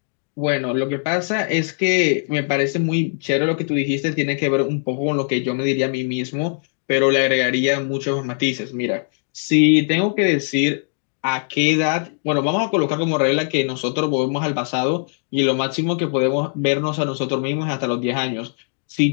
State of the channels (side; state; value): right; silent; digital silence